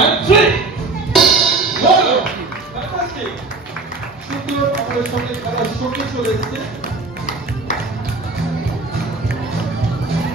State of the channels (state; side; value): quieter; left; 3.6 dB